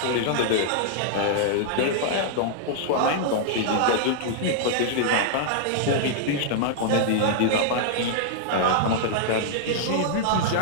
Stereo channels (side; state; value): both; different; correlation -0.01